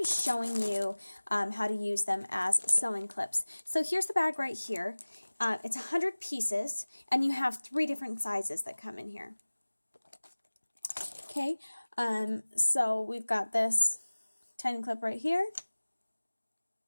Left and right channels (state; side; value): inverted; both; correlation -1.00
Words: showing you how to use them as sewing clips. So here's the bag right here. It's 100 pieces and you have 3 different sizes that come in here. Okay, so we've got this tiny clip right here,